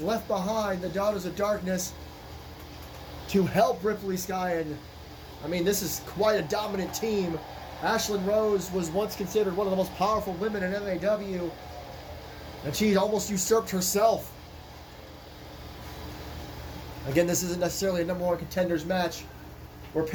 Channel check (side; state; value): both; identical; correlation 1.00